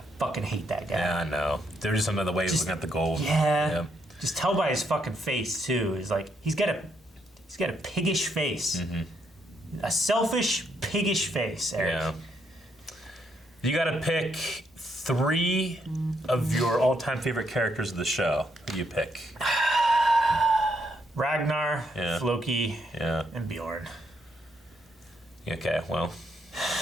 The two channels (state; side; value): normal; both; correlation 0.76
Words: fucking hate that guy. Yeah, I know. There were just some other ways looking at the gold. Yeah. Just tell by his fucking face too. Is like he's got a piggish face. A selfish, piggish face, Eric. Yeah. You gotta pick 3 of your all-time favorite characters of the show. Who do you pick? Ragnar, Yeah. Floki, Yeah. and Bjorn. Okay, well.